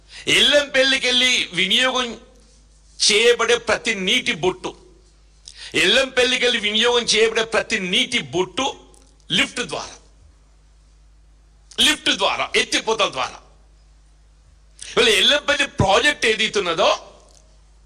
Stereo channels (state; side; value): identical; both; correlation 1.00